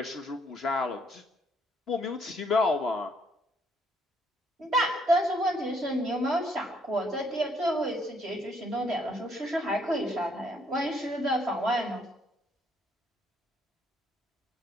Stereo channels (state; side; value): normal; both; correlation 0.69